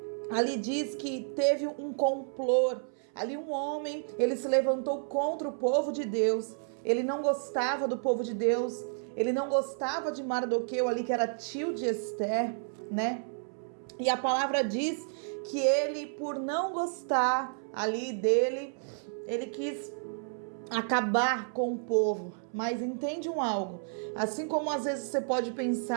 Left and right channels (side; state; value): left; silent; 57 dB below the other